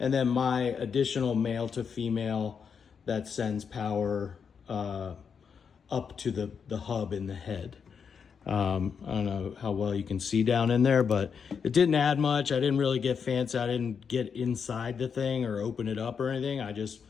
then my additional male to female that sends power up to the hub in the head. I don't know how well you can see down in there, but it didn't add much. I didn't really get fancy. I didn't get inside the thing or open it up or anything. I just,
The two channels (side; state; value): right; quieter; 6.5 dB